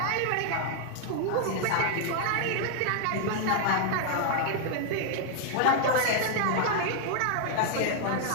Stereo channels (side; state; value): both; different; correlation 0.00